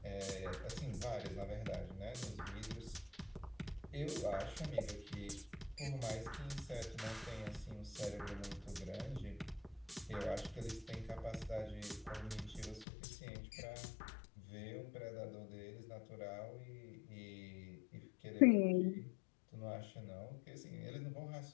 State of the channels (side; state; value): right; drops out; at 12.9 s